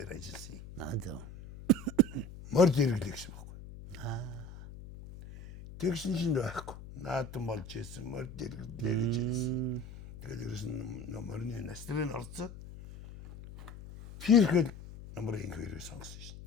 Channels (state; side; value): noise; left; hum, 14 dB below the sound